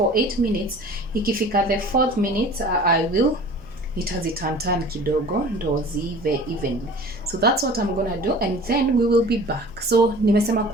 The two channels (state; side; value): noise; right; hum, 25 dB below the sound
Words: 8 minutes, ikifika the 4th minute I will itazitantan kidogo ndo ziive evenly. So that's what I'm gonna do, and then we will be back. So nimesema